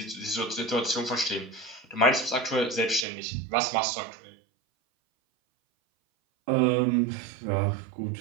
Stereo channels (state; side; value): drops out; left; at 3.1 s